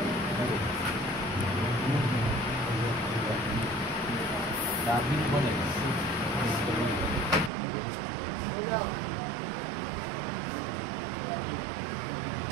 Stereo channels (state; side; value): drops out; left; at 7.5 s